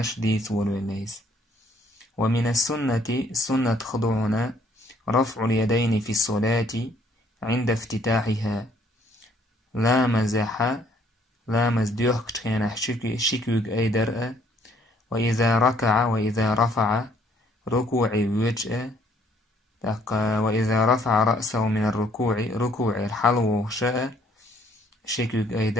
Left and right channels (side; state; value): both; normal; correlation 0.64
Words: ديت والوليس. ومن السنة خضوعنا رفع اليدين في الصلاة عند افتتاحها لا مزديوخ كتخينا شكوك أي درء وإذا ركع وإذا رفع ركوع وجه وإذا رفع رأسه من ركوع الحلو شاء شكوك أي